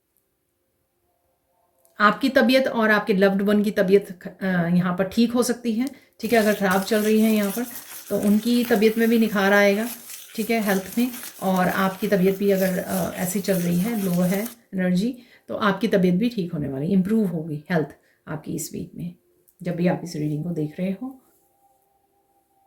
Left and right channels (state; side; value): identical; both; correlation 1.00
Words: आपकी तबीयत और आपके लव्ड वन की तबीयत यहाँ पर ठीक हो सकती है। ठीक है, अगर ख़राब चल रही है यहाँ पर, तो उनकी तबीयत में भी निखार आएगा। ठीक है, हेल्थ में। और आपकी तबीयत भी अगर ऐसी चल रही है, लो है एनर्जी, तो आपकी तबीयत भी ठीक होने वाली, इम्प्रूव होगी हेल्थ आपकी इस वीक में, जब भी आप इस रीडिंग को देख रहे हो।